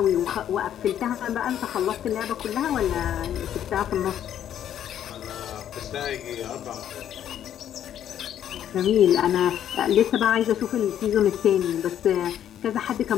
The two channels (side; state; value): right; quieter; 10.4 dB